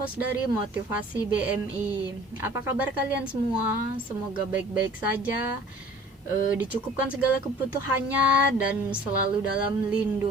dari Motivasi BMI. Apa kabar kalian semua? Semoga baik-baik saja, dicukupkan segala kebutuhannya dan selalu dalam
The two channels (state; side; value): normal; both; correlation 0.48